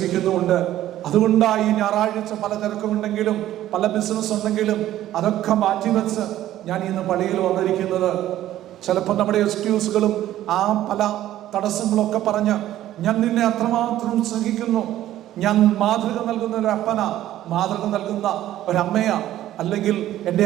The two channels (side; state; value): left; quieter; 13.3 dB